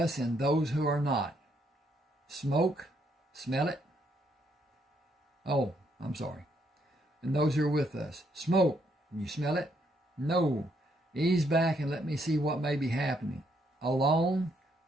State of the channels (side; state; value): both; normal; correlation 0.73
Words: and those who are not? Smoke? Smell it? Oh, I'm sorry. And those who are with us. Smoke. You smell it? No. Ease back and let me see what may be happening. Alone?